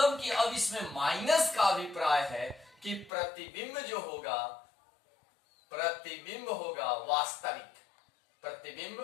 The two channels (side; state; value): right; drops out; at 3.1 s